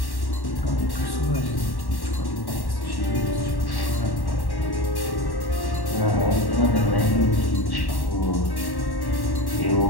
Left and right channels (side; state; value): right; late; 1.1 ms